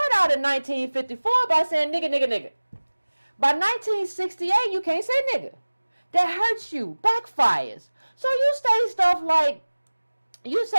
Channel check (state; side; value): inverted; both; correlation -1.00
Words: out in 1954 by saying nigga, nigga, nigga. By 1968, you can't say nigga. That hurts you, backfires. So you say